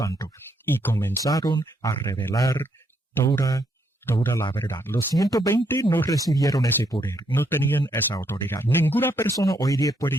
y comenzaron a revelar toda la verdad. Los 120 no recibieron ese poder, no tenían esa autoridad. Ninguna persona hoy día puede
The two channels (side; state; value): both; normal; correlation 0.74